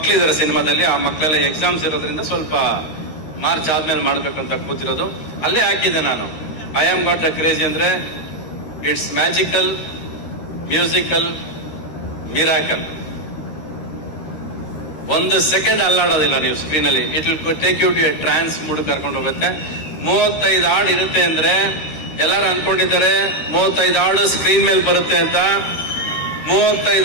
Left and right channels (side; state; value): right; late; 13 ms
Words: ಸಿನಿಮಾದಲ್ಲಿ, ಆ ಮಕ್ಕಳೆಲ್ಲ ಎಕ್ಸಾಮ್ಸ್ ಇರೋದ್ರಿಂದ ಸ್ವಲ್ಪ ಮಾರ್ಚ್ ಆದ್ಮೇಲೆ ಮಾಡ್ಬೇಕಂತ ಕೂತಿರೋದು. ಅಲ್ಲೇ ಹಾಕಿದ್ದೆ ನಾನು. I am got the crazy ಅಂದ್ರೆ it's magical, musical, miracle. 1 second ಅಲ್ಲಾಡೋದಿಲ್ಲ ನೀವು ಸ್ಕ್ರೀನಲ್ಲಿ. It will take you to a trance mood ಕರ್ಕೊಂಡು ಹೋಗುತ್ತೆ. 35 ಹಾಡು ಇರುತ್ತೆ ಅಂದ್ರೆ ಎಲ್ಲರೂ ಅನ್ಕೊಂಡಿದ್ದಾರೆ 35 ಹಾಡು ಸ್ಕ್ರೀನ್ ಮೇಲೆ ಬರುತ್ತೆ ಅಂತ.